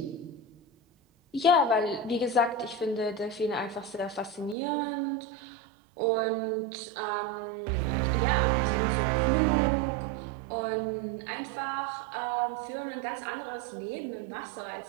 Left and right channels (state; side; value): drops out; left; at 4.5 s